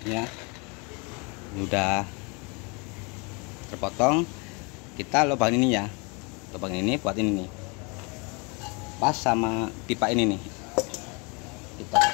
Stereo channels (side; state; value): right; quieter; 31.4 dB